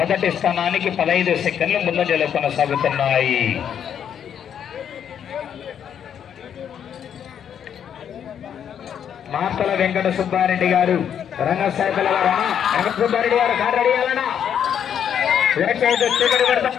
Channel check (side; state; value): right; quieter; 8.7 dB